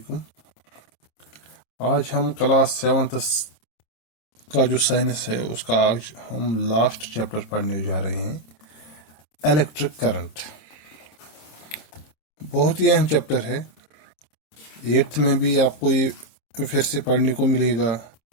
आज हम क्लास 7th का जो साइंस है उसका आज हम लास्ट चैप्टर पढ़ने जा रहे हैं, इलेक्ट्रिक करंट। बहुत ही अहम चैप्टर है। 8th में भी आपको ये फिर से पढ़ने को मिलेगा,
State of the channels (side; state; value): right; late; 26 ms